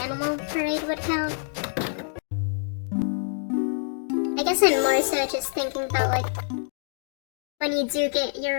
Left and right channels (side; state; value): right; silent; digital silence